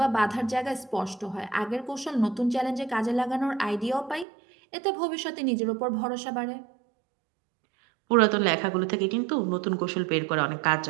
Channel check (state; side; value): drops out; left; at 4.2 s